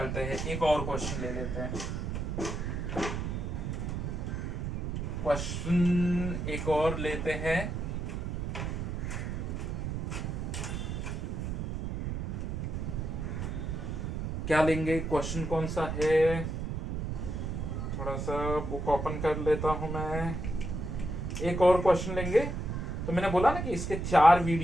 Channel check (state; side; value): noise; right; rumble, 3 dB below the sound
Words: हैं, एक और क्वेश्चन ले लेते हैं, क्वेश्चन एक और लेते हैं। क्या लेंगे, क्वेश्चन कौन सा है, थोड़ा सा बुक ओपन कर लेता हूं मैं। एक और क्वेश्चन लेंगे, तो मैंने बोला ना कि इसके 4